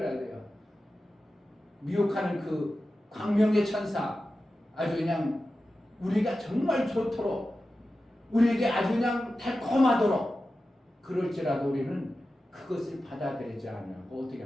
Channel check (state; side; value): normal; both; correlation 0.93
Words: 돼요? 미혹하는 그 광명의 천사, 아주 그냥 우리가 정말 좋도록 우리에게 아주 그냥 달콤하도록 그럴지라도 우리는 그것을 받아들이지 않냐고 어떻게